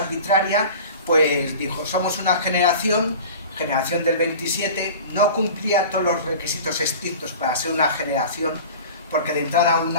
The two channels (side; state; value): both; inverted; correlation -0.38